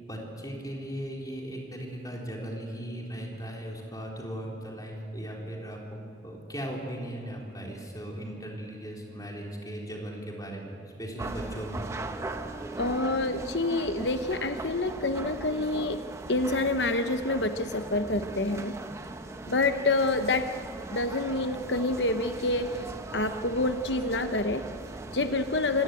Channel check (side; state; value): both; normal; correlation 0.09